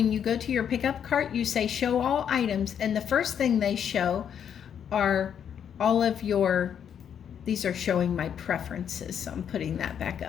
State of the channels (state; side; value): quieter; right; 8.5 dB